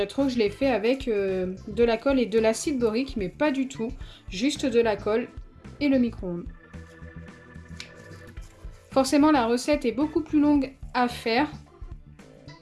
trop que je l'ai fait avec de la colle et de l'acide borique, mais pas du tout. Juste de la colle et le micro-ondes. Forcément, la recette est beaucoup plus longue à faire.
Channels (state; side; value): identical; both; correlation 1.00